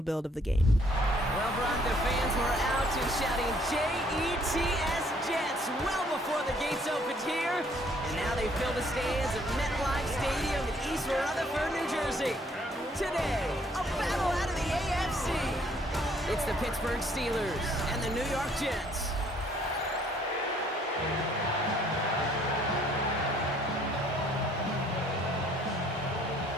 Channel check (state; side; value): normal; both; correlation 0.63